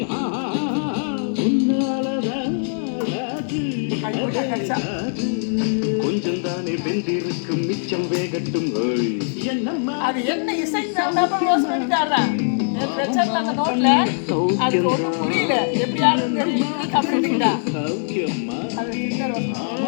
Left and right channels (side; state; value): right; silent; 64 dB below the other